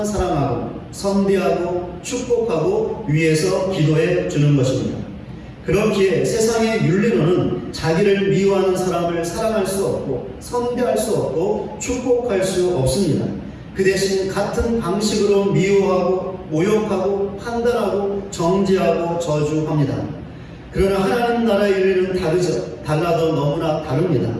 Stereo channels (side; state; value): both; identical; correlation 1.00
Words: 사랑하고 선대하고 축복하고 위해서 기도해 주는 것입니다. 그렇기에 세상의 윤리로는 자기를 미워하는 사람을 사랑할 수 없고 선대할 수 없고 축복할 수 없습니다. 그 대신 같은 방식으로 미워하고 모욕하고 판단하고 정죄하고 저주합니다. 그러나 하나님 나라의 윤리는 다르죠. 달라도 너무나 다릅니다.